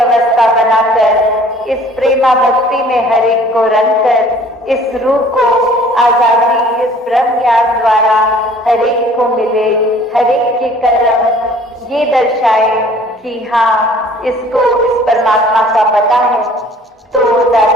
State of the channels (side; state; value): both; normal; correlation 0.53